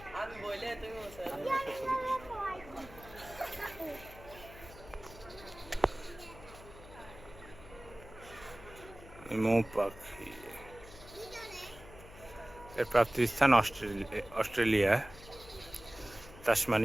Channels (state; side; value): noise; left; hum, 18 dB below the sound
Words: আমি বলে তুমি বসে আছে। মৌ পাখি এর প্রাপ্তিস্থান অস্ট্রেলিয়া,